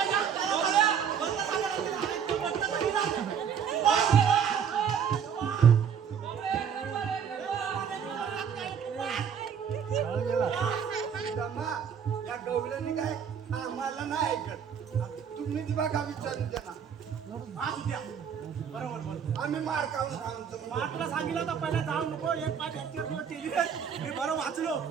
या गवल्याने काय आम्हाला नाही ऐकत. तुम्हीच बघा विचारून त्यांना. बरोबर आम्ही मार खाऊन सांगतो. तुला सांगितलं तर पहिला जाऊ नको. एक पाच केली मी बरं वाचलो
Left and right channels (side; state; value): left; quieter; 7.6 dB